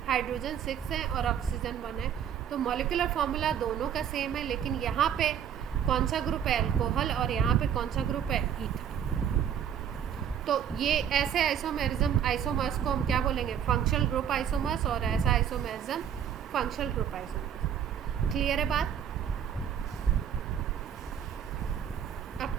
हाइड्रोजन 6 है और ऑक्सीजन 1 है, तो मॉलिक्यूलर फॉर्मूला दोनों का सेम है, लेकिन यहाँ पे कौन सा ग्रुप है अल्कोहल और यहाँ पे कौन सा ग्रुप है ईथर। तो ये ऐसे आइसोमर्स को हम क्या बोलेंगे, फंक्शनल ग्रुप आइसोमर्स, और ऐसा isomerism functional group isomers. Clear है बात? अब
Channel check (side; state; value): left; quieter; 8.9 dB